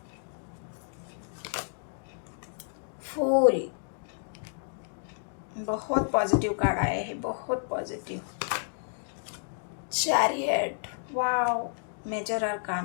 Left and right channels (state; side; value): silent; right; digital silence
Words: फूल, बहुत पॉजिटिव कार्ड आए हैं, बहुत positive. Chariot, wow, major